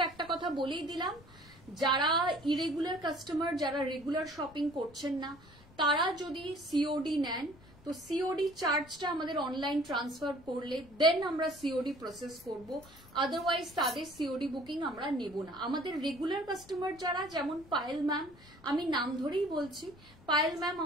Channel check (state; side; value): noise; left; rumble, 23 dB below the sound